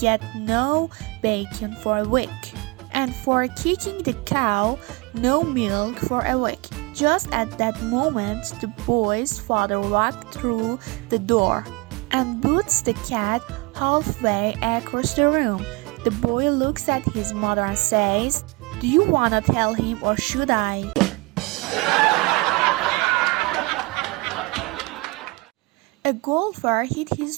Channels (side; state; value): left; quieter; 24.9 dB